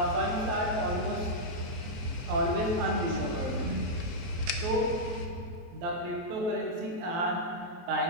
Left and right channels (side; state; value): left; late; 23 ms